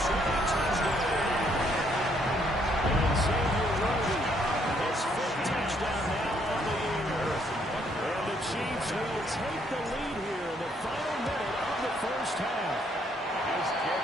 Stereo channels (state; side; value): normal; both; correlation 0.69